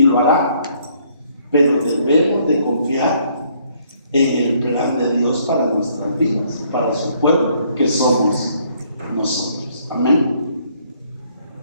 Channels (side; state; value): both; inverted; correlation -0.66